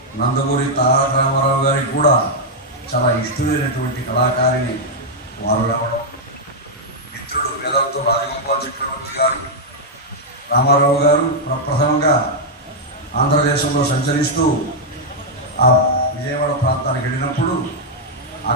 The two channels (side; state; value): both; normal; correlation -0.03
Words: నందమూరి తారక రామారావు గారికి కూడా చాలా ఇష్టమైనటువంటి కళాకారిణి వారు రావడం, మిత్రుడు వేదాంతం రాజగోపాల్ చక్రవర్తి గారు, రామారావు గారు ప్రప్రథమంగా ఆంధ్రదేశంలో సంచరిస్తూ ఆ విజయవాడ ప్రాంతానికి వెళ్ళినప్పుడు